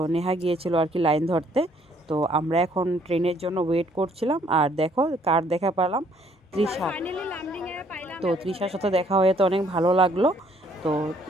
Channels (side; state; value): both; normal; correlation 0.64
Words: নেহা গিয়েছিল আর কি লাইন ধরতে। তো আমরা এখন ট্রেনের জন্য ওয়েট করছিলাম। আর দেখো কার দেখা পেলাম, তৃষা। তো তৃষার সাথে দেখা হয়ে তো অনেক ভালো লাগলো। তো